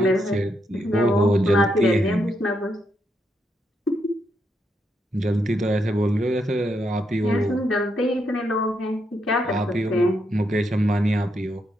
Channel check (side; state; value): both; normal; correlation 0.79